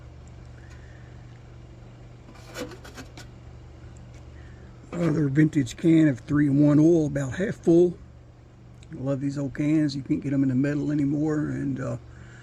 Another vintage can of 3-in-1 oil, about half full. I love these old cans. You can't get them in the metal anymore, and I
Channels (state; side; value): identical; both; correlation 1.00